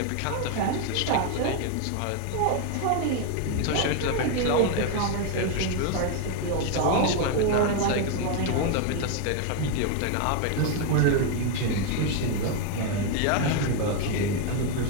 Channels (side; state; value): both; different; correlation 0.01